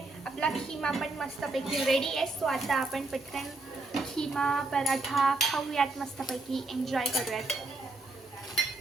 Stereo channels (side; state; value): left; quieter; 3.1 dB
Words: आपला खिमा पण मस्तपैकी रेडी आहे. सो आता आपण पटकन खिमा पराठा खाऊयात, मस्तपैकी एन्जॉय करूयात.